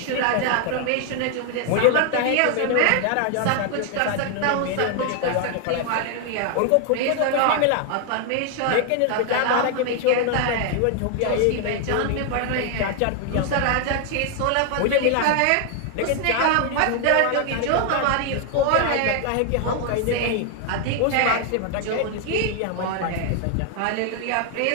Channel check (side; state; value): both; different; correlation 0.00